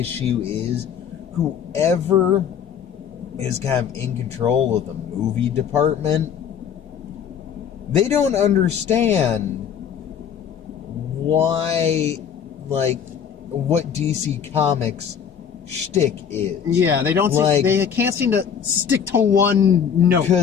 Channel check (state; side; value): quieter; right; 7.9 dB